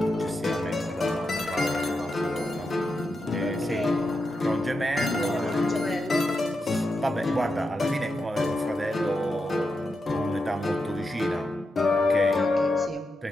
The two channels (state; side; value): normal; both; correlation 0.87